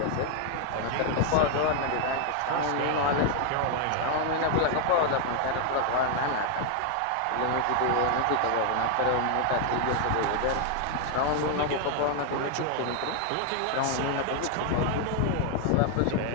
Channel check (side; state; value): both; different; correlation 0.00